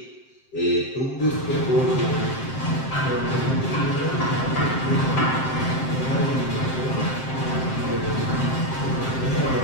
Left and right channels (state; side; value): late; right; 7.7 ms